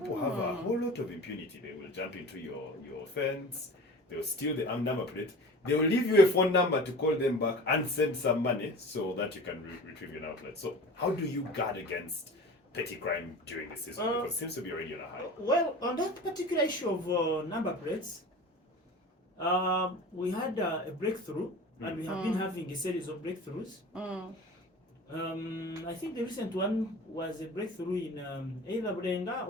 have a whole lot of impunity. They will jump into your fence, They'll steal the number plate. They will leave you a phone number to call them back and send some money so that you can retrieve your number plate. So how do you guard against petty crime during the season? Because it seems to be already on a high. Well, on that particular issue of number plates, we had a breakthrough, and we have been having a series of breakthroughs. I think the recent one was a breakthrough in either Bulenga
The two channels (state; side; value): normal; both; correlation 0.37